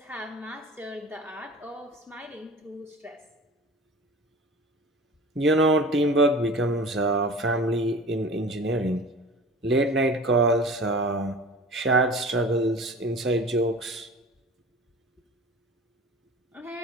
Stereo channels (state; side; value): normal; both; correlation 0.39